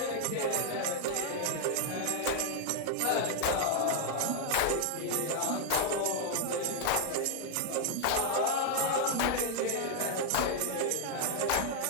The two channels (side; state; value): both; different; correlation 0.00